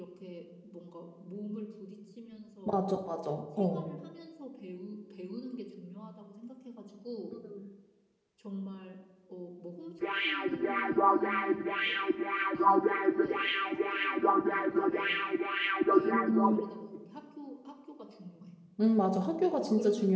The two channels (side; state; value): both; identical; correlation 1.00